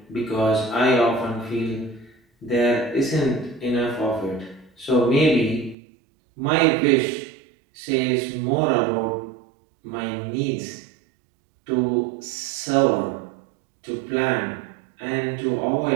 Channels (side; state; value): left; drops out; at 5.8 s